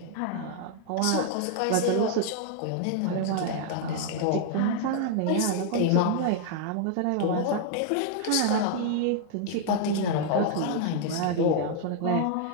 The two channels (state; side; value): different; both; correlation 0.00